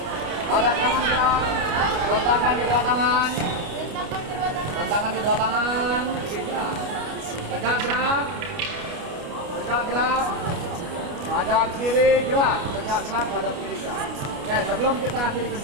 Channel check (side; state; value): left; late; 29 ms